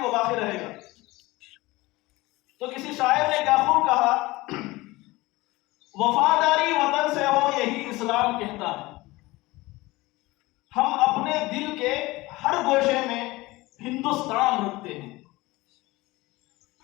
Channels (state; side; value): quieter; right; 20.6 dB